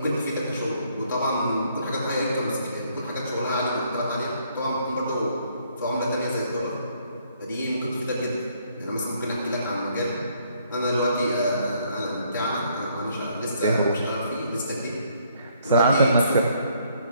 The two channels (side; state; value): both; inverted; correlation -0.67